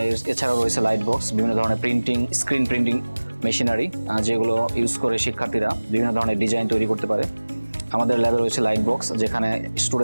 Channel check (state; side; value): inverted; both; correlation -1.00